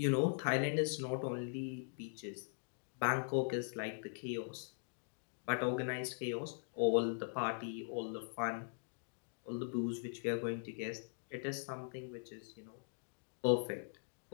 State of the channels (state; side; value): silent; right; digital silence